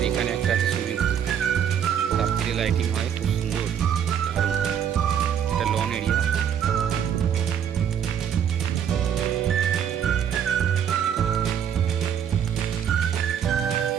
এখানে একটা আছে সুইমিং পুল, রাত্রে লাইটিং হয়, খুব সুন্দর, দারুণ। একটা লন এরিয়া।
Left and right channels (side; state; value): left; quieter; 8.7 dB